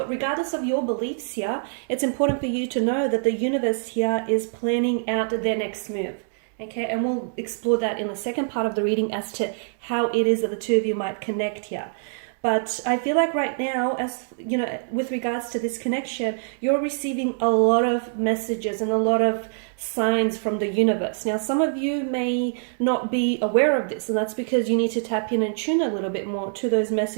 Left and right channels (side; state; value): left; silent; digital silence